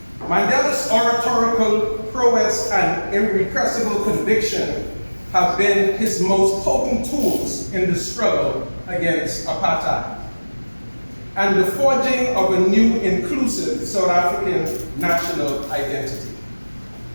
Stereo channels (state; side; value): inverted; both; correlation -1.00